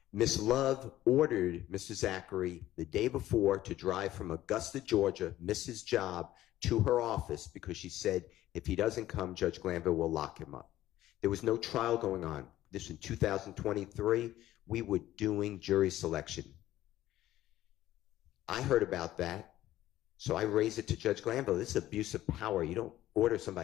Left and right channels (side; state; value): right; quieter; 14.3 dB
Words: Ms. Love ordered Mr. Zachary the day before to drive from Augusta, Georgia, miss his job, to her office because she said if he doesn't come, Judge Glanville will lock him up. There was no trial going on. This in 2023, we were doing jury selection. I heard about that, so I raised it to Judge Glanville. This is abuse of power. You don't order